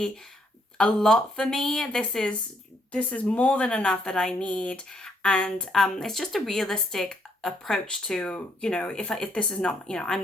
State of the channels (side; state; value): both; normal; correlation 0.71